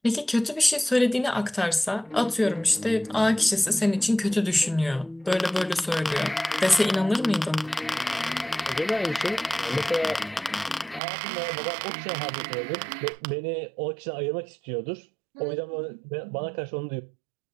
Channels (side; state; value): left; drops out; at 11.0 s